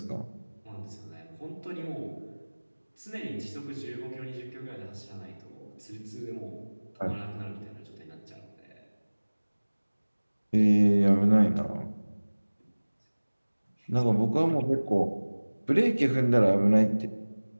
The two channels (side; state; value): both; inverted; correlation -1.00